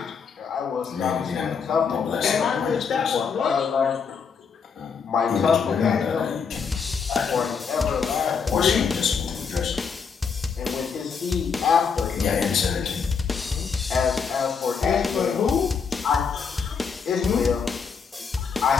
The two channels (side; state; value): right; quieter; 6.0 dB